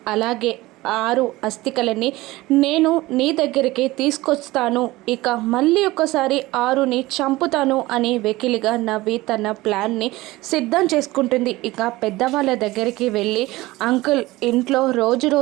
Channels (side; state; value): left; quieter; 19.2 dB